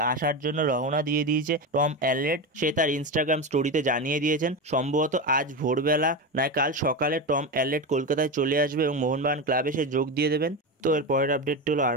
আসার জন্য রওনা দিয়ে দিয়েছে টম অ্যালরেড। সে তার ইনস্টাগ্রাম স্টোরিতে জানিয়ে দিয়েছেন সম্ভবত আজ ভোরবেলা নয় কাল সকালে টম অ্যালরেড কলকাতায় চলে আসবে এবং মোহনবাগান ক্লাবে সে যোগ দিয়ে দেবেন। তো এর পরের আপডেটটি হলো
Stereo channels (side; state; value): both; normal; correlation 0.18